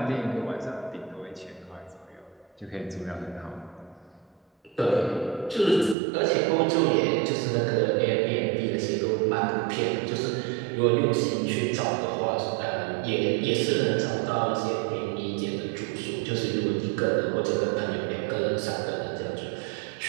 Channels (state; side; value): drops out; left; at 6.0 s